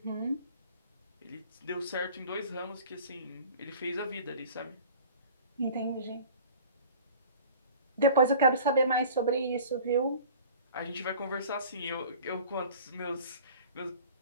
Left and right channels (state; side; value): inverted; both; correlation -0.44